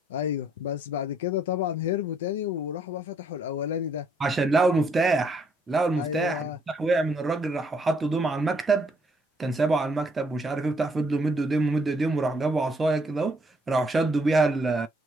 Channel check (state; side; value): normal; both; correlation 0.69